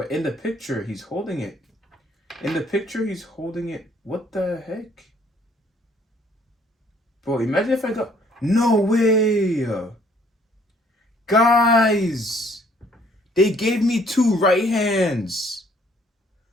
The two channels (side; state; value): both; normal; correlation 0.62